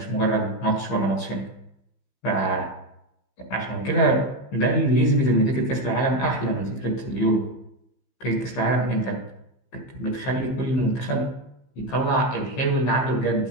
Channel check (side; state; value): right; late; 15 ms